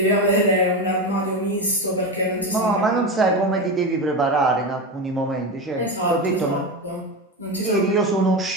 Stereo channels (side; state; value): both; normal; correlation 0.19